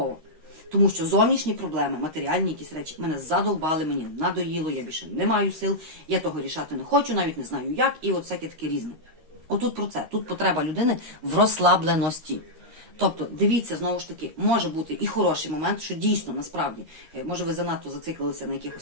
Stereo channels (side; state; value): left; late; 13 ms